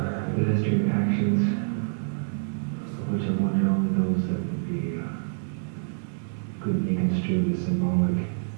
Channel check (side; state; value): left; silent; digital silence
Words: Pedestrian actions, which I wonder only those that would be could be construed as symbolic,